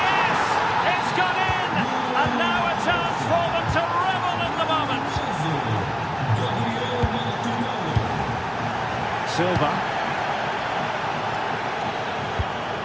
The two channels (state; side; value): identical; both; correlation 1.00